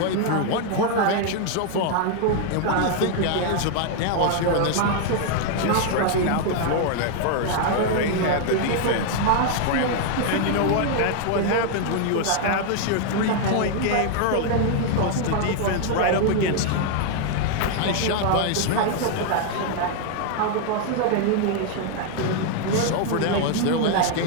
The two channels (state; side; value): different; both; correlation 0.00